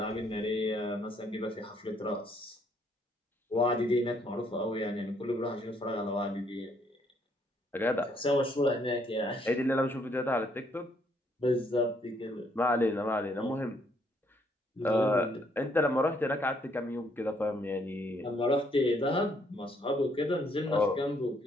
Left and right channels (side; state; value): both; normal; correlation 0.69